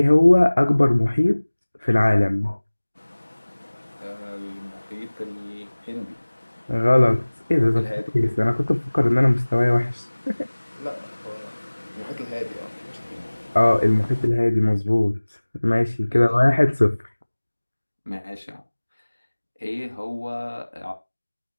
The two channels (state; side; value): inverted; both; correlation -1.00